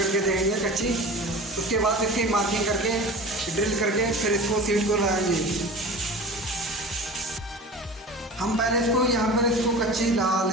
देंगे कच्ची। उसके बाद इसकी मार्किंग करके ड्रिल करके फिर इसको सीट को लगाएंगे। हम पहले इसको यहाँ पर इसको कच्ची लगा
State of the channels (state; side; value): normal; both; correlation 0.36